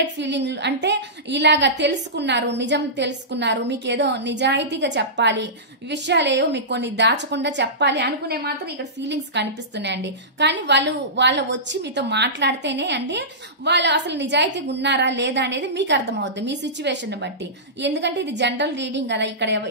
ఫీలింగ్ అంటే ఇలాగా తెలుసుకున్నారు, నిజం తెలుసుకున్నారు, మీకు ఏదో నిజాయితీగా చెప్పాలి, విషయాలేవో మీకు కొన్ని దాచకుండా చెప్పాలి అనుకునే మాత్రం ఇక్కడ ఫీలింగ్స్ కనిపిస్తున్నాయండి. కానీ వాళ్ళు వచ్చి మీతో మాట్లాడితేనే అండి వాళ్ళు అసలు నిజాయితీగా ఉన్నారా లేదా అనేది మీకు అర్థమవుతుంది మీ సిచ్యువేషన్ బట్టి. ఎందుకంటే ఇది జనరల్ రీడింగ్ కదా, ఇక్కడ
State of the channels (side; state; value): both; normal; correlation -0.18